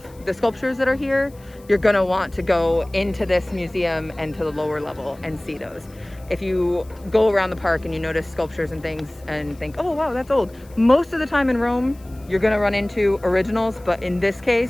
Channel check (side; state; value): left; noise; hiss, 27 dB below the sound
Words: the sculptures that are here, you're gonna want to go into this museum and to the lower level and see those. If you go around the park and you notice sculptures and things and think, oh wow, that's old. Most of the time in Rome, you're gonna run into originals, but in this